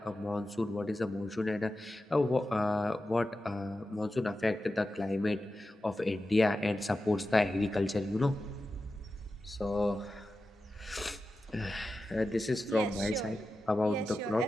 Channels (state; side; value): normal; both; correlation 0.92